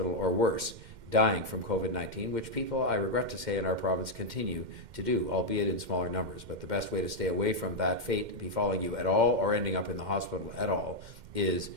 or worse, dying from COVID-19, which people, I regret to say, in our province continue to do, albeit in smaller numbers. But the best way to stay away from that fate befalling you at all or ending up in the hospital at all is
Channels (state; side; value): late; left; 2.1 ms